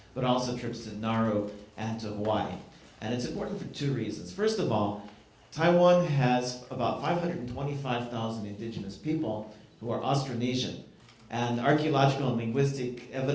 but also trips to Nauru and to Hawaii. And it's important for 2 reasons. First of all, Taiwan has about 525,000 indigenous people who are Austronesian. And archaeological and linguistic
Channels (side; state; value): both; identical; correlation 1.00